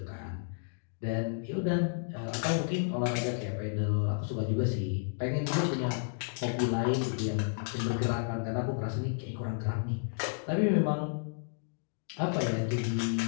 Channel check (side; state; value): right; silent; digital silence